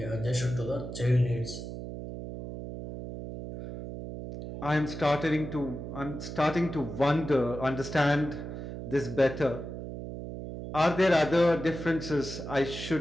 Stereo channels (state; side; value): noise; right; hum, 8 dB below the sound